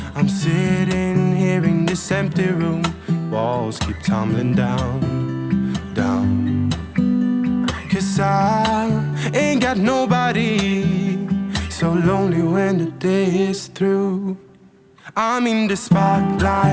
I'm sitting here in this empty room, walls keep tumbling down, down. 'Cause I ain't got nobody, so lonely when the day is through. I'm in the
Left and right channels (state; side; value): identical; both; correlation 1.00